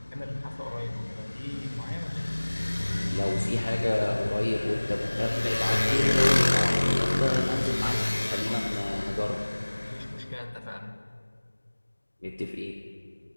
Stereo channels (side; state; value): both; inverted; correlation -1.00